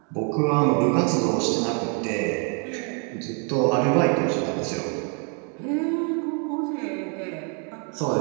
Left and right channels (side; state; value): left; quieter; 38.9 dB